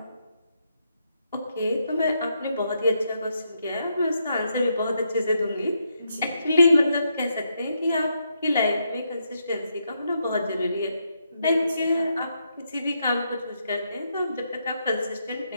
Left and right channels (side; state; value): both; inverted; correlation -0.79